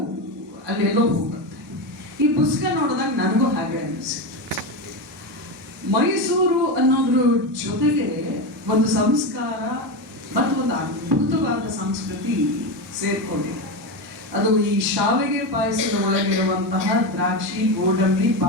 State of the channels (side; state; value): both; normal; correlation 0.16